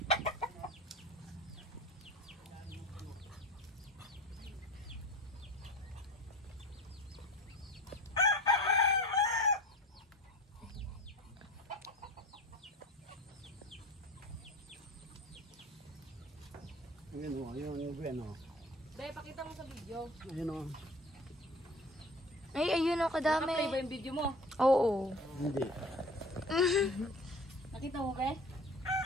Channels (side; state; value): both; normal; correlation 0.38